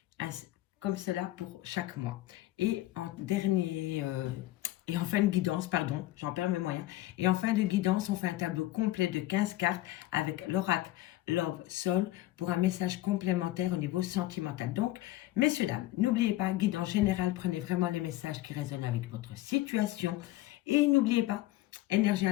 Comme cela pour chaque mois. Et en et en fin de guidance, pardon, j'en perds mes moyens. Et en fin de guidance, on fait un tableau complet de 15 cartes avec l'oracle Love Soul pour un message complémentaire au niveau sentimental. Donc, messieurs, dames, n'oubliez pas, guidance générale, prenez vraiment les messages qui résonnent avec votre situation. Et n'oubliez pas, énergie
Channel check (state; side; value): quieter; right; 16.3 dB